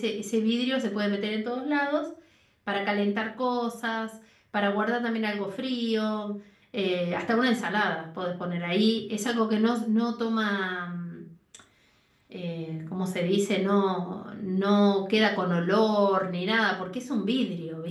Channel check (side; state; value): both; identical; correlation 1.00